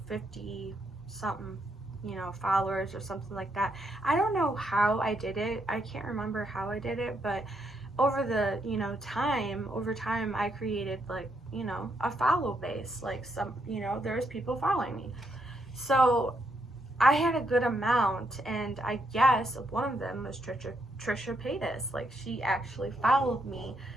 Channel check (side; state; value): both; normal; correlation 0.77